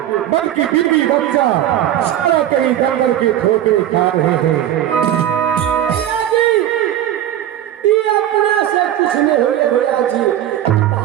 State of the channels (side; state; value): left; quieter; 11.7 dB